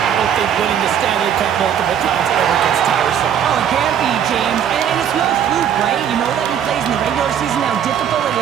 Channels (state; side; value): quieter; left; 8.9 dB